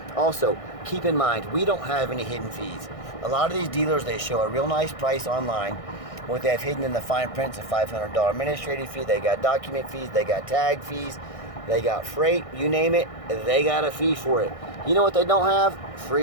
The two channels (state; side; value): late; right; 1.6 ms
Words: Also, keep in mind, we don't have any hidden fees. A lot of these dealers, they show a real nice price online. What they have hidden in the fine print's a $500 administrative fee. They got document fees, they got tag fees, they got freight, you name it, they got a fee for it. You know what they don't have?